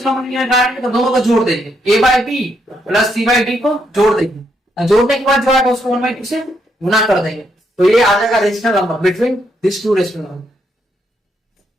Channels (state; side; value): normal; both; correlation 0.77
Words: नंबर निकालेंगे, तो दोनों को जोड़ देंगे, a by B plus c by D को जोड़ देंगे, जोड़ने के बाद जो आएगा उसको 1/2 से गुना कर देंगे, तो ये आ जाएगा rational number between this two rational